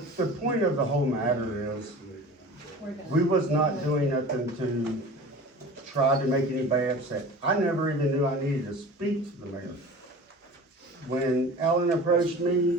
The point of the whole matter is, We're done. we was not doing nothing to try to make anybody upset. I never even knew I needed to speak to the mayor. When Alan approached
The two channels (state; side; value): normal; both; correlation 0.39